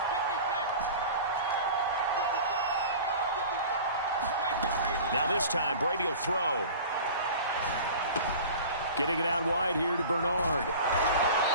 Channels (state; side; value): inverted; both; correlation -0.39